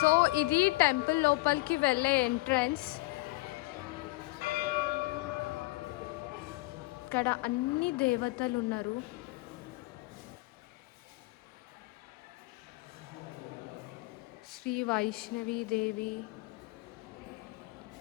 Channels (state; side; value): quieter; right; 22.0 dB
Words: ఇది టెంపుల్ లోపలికి వెళ్ళే ఎంట్రన్స్. ఇక్కడ అన్ని దేవతలు ఉన్నారు. శ్రీ వైష్ణవి దేవి,